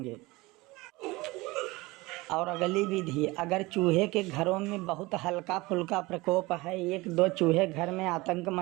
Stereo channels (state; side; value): quieter; left; 21.9 dB